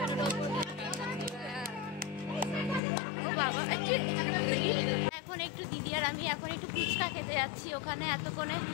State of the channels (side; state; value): right; drops out; at 2.8 s